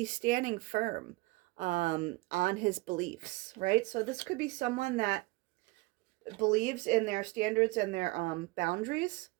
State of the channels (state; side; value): quieter; left; 22.7 dB